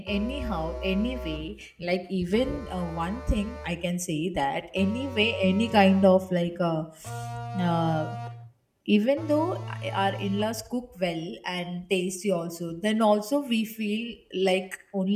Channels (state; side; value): identical; both; correlation 1.00